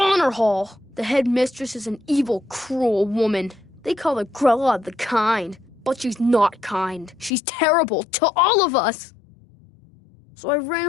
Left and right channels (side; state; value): right; drops out; at 7.3 s